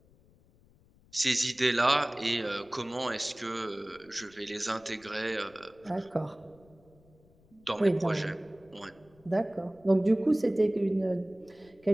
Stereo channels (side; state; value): left; noise; rumble, 29 dB below the sound